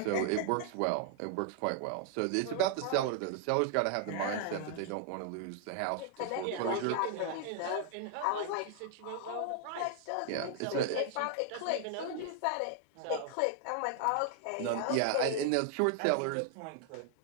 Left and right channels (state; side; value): different; both; correlation 0.00